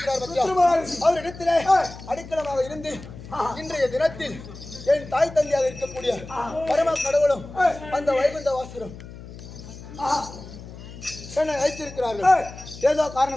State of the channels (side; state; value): left; noise; hum, 15 dB below the sound